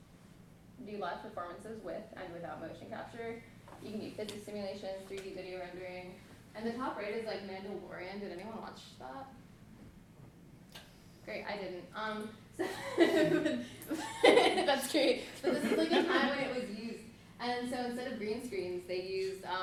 do live performances with and without motion capture. You can do physics simulations, 3D video rendering. And the top right is like Mandalorian. Did anyone watch that? Great, I didn't. So that's great. But this is like a time when it was used. And so instead of green screens, they used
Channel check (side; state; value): both; identical; correlation 1.00